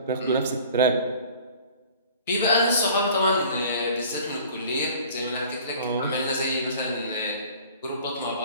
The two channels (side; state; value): both; inverted; correlation -0.47